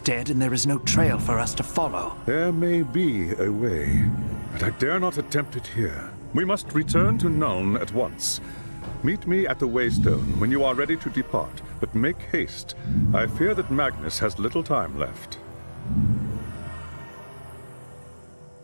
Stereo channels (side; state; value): both; inverted; correlation -1.00